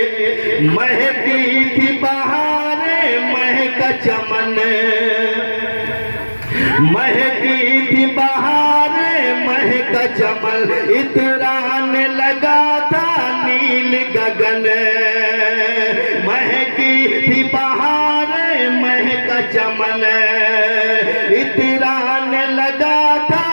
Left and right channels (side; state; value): both; inverted; correlation -1.00